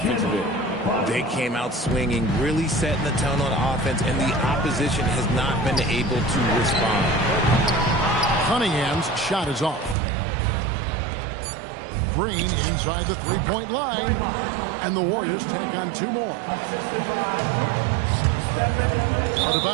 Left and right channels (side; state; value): left; drops out; at 10.0 s